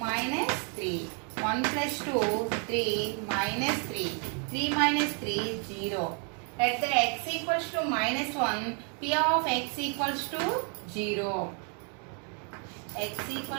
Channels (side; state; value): left; quieter; 39.8 dB